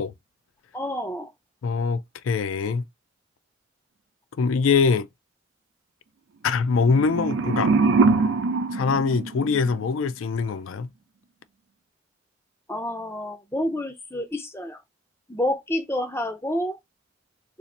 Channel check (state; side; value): normal; both; correlation 0.41